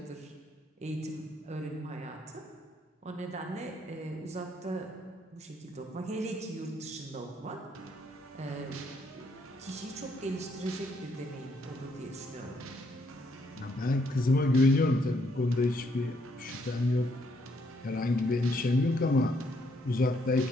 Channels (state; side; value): normal; both; correlation 0.71